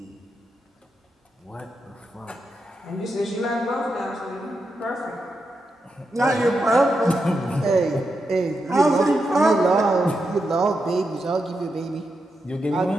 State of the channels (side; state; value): both; normal; correlation 0.86